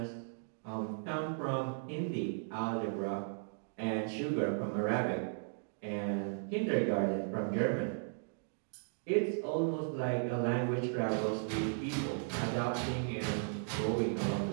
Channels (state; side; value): silent; left; digital silence